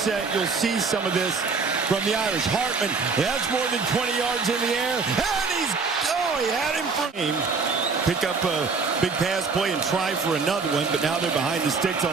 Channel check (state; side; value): quieter; left; 4.8 dB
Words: you'll see some of this from the Irish. Hartman, that's more than 20 yards in the air. And he had him for him. Pick up a big pass play and try for another one, but now they're behind the sticks